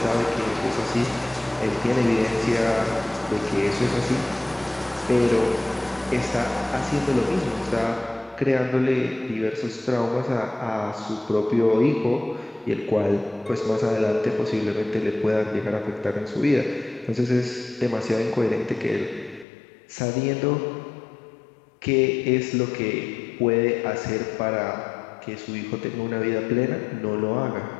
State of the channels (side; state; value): right; drops out; at 19.5 s